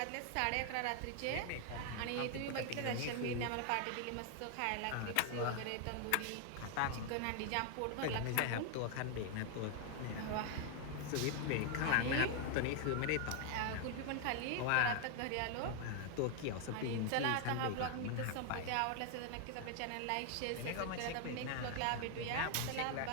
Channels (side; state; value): both; different; correlation 0.00